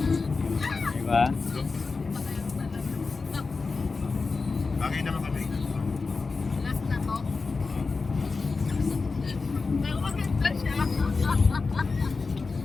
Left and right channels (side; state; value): right; quieter; 4.2 dB